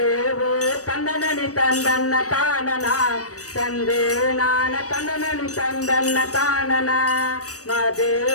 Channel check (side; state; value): right; late; 0.66 ms